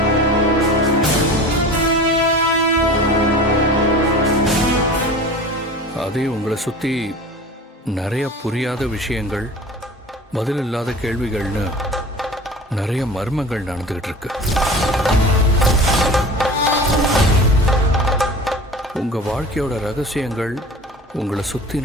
அதே உங்களை சுற்றி நிறைய புரியாத விஷயங்கள், பதில் இல்லாத கேள்விகள்னு நிறைய மர்மங்கள் நடந்துகிட்டு இருக்கு. உங்க வாழ்க்கையோட ரகசியங்கள், உங்களை சுற்றி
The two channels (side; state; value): both; normal; correlation 0.38